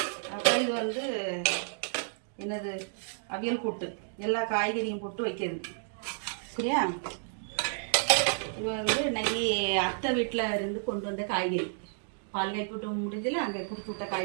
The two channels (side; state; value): left; silent; digital silence